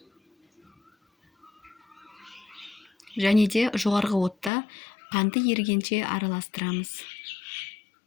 Және де жоғарғы отта қанты ерігенше араластырамыз.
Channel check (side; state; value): right; drops out; at 4.5 s